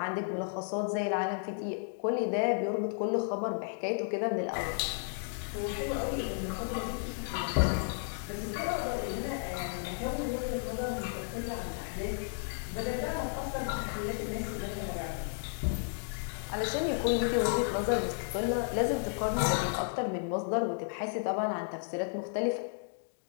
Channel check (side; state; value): right; silent; digital silence